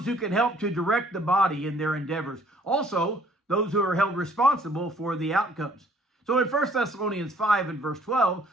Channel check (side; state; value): both; normal; correlation 0.60